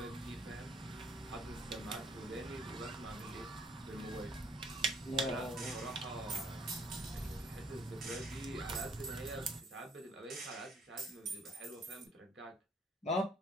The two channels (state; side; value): normal; both; correlation 0.62